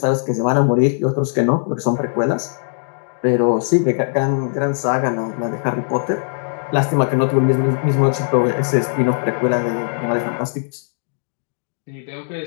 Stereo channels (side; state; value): right; silent; digital silence